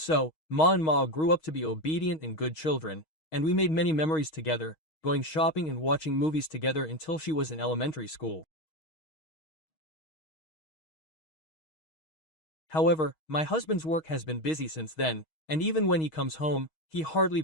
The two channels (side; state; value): right; late; 6.3 ms